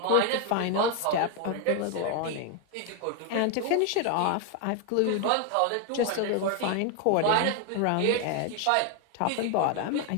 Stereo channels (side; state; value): both; different; correlation 0.01